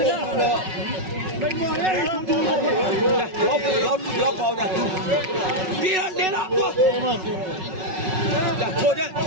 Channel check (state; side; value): late; left; 5.4 ms